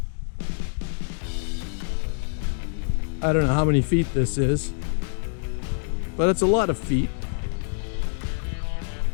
I don't know how many feet this is, but it's a lot of feet.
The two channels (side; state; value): right; silent; 61 dB below the other